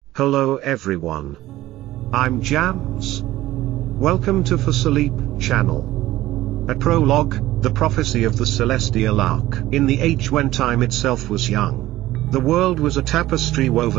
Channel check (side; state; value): left; quieter; 15.8 dB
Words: Hello everyone. I'm Jams. Welcome to For Sleep channel. A prologue, the prophecy of the celestial ark. In the age when time itself was young, the world was a tapestry